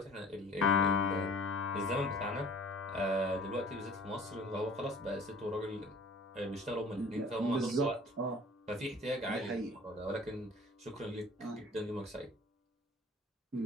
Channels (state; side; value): normal; both; correlation 0.48